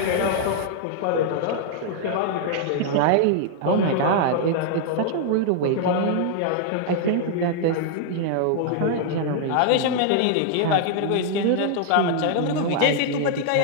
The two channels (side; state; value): both; different; correlation -0.01